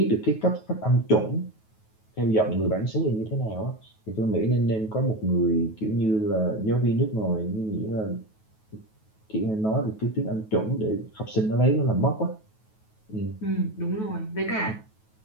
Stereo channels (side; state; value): right; late; 9.3 ms